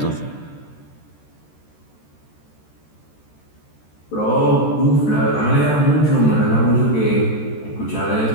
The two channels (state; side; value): late; right; 13 ms